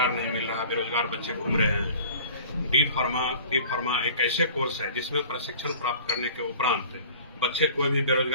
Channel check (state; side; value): inverted; both; correlation -0.45